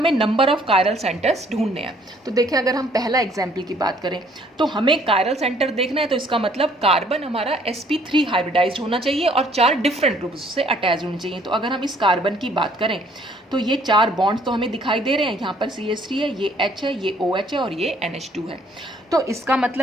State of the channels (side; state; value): both; normal; correlation 0.62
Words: नंबर ऑफ कायरल सेंटर्स ढूंढने हैं। तो देखिए, अगर हम पहला एग्जाम्पल की बात करें तो हमें कायरल सेंटर देखना है, तो इसका मतलब कार्बन हमारा sp3 हाइब्रिडाइज्ड होना चाहिए और 4 डिफरेंट ग्रुप्स से अटैच होने चाहिए। तो अगर हम इस कार्बन की बात करें तो ये 4 बॉन्ड्स तो हमें दिखाई दे रहे हैं, यहाँ पर CH3 है, ये H है, ये OH है और ये NH2 है। तो इसका